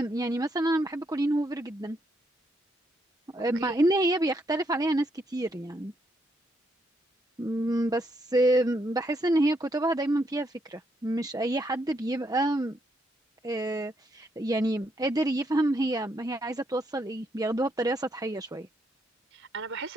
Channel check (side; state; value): both; normal; correlation 0.76